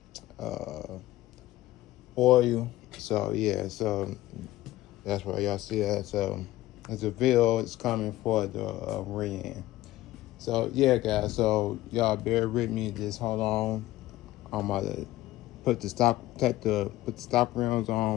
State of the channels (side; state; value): right; quieter; 16.2 dB